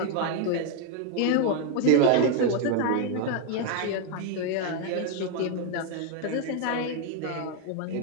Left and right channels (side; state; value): both; different; correlation 0.00